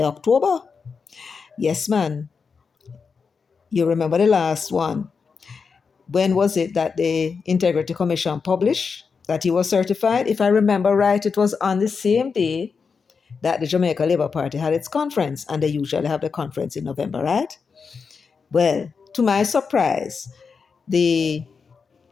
October. Yes, man. You remember the last one. When was it that the Integrity Commission published that he was certified? If I remember right, it was on the same day that the Jamaica Labour Party had its conference, and they usually have the conference in November, right? Well, to my surprise, the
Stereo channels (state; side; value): quieter; right; 5.4 dB